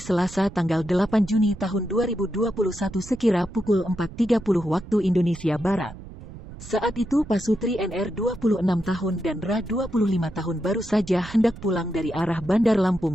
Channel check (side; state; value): right; noise; rumble, 15 dB below the sound